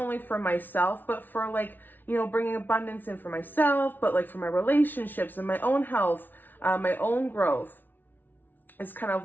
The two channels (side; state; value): right; late; 0.089 ms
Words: for myself, but for like, you know, bringing abundance in for myself, but like for my relationships and my own health, my own growth. Is kind of